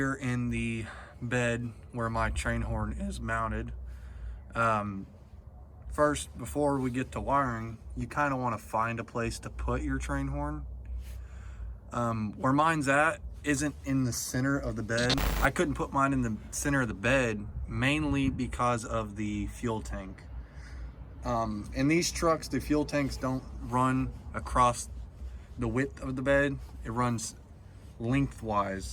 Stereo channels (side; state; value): both; identical; correlation 1.00